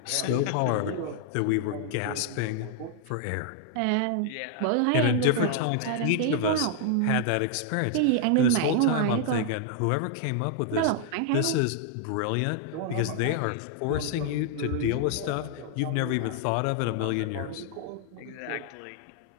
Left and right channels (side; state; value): both; different; correlation 0.00